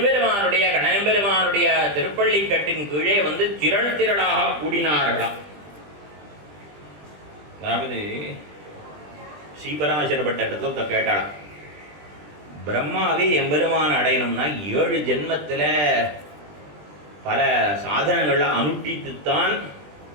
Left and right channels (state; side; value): late; left; 20 ms